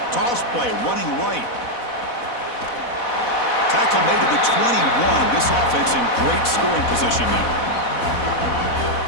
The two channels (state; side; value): late; right; 4.1 ms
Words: Toss play, running right. Tackle made to the 21. This offense in great scoring position now.